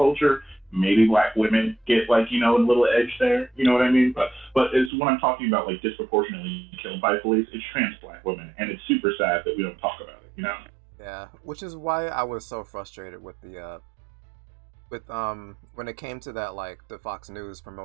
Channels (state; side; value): drops out; left; at 4.9 s